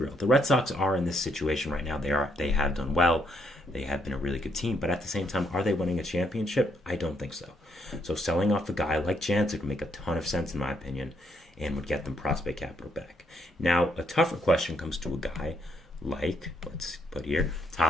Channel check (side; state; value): both; normal; correlation 0.73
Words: the Red Sox are in this situation right now. They have done well. They have been a really good team, but at the same time, are they winning a championship? I don't think so. So selling off a guy like Jansen would make a ton of sense in my opinion and would get them prospect capital back. Now, a tougher question comes to a guy like, let's put here,